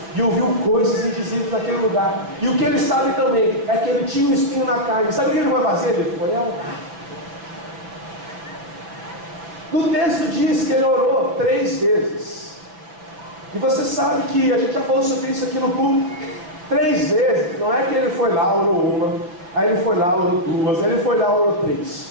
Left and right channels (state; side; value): late; left; 5.9 ms